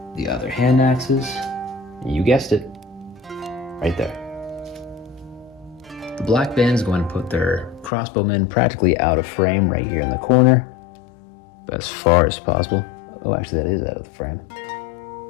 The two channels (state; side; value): drops out; right; at 7.9 s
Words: The other hand axes, you guessed it, right there. The Black Band is going to put their crossbowmen practically out of frame right here in the corner, as far as possible. Oh, actually that is out of the frame.